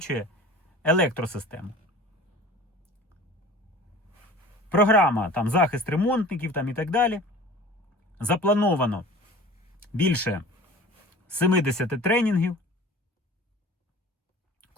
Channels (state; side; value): normal; both; correlation 0.42